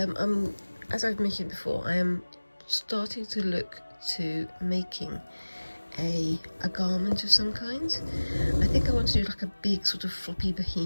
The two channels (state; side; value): inverted; both; correlation -1.00